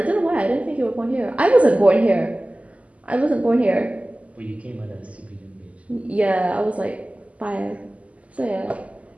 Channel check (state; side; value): late; left; 0.067 ms